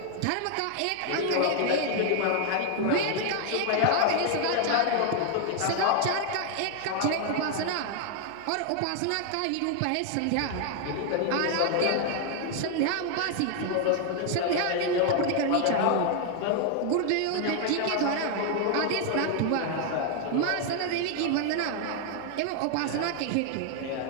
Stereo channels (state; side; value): different; both; correlation 0.00